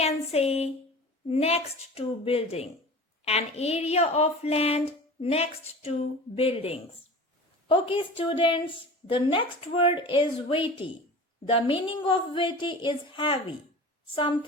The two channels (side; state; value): both; normal; correlation 0.37